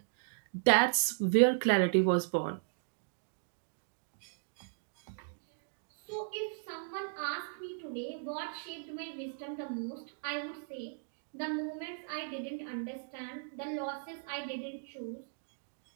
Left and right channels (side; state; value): left; silent; digital silence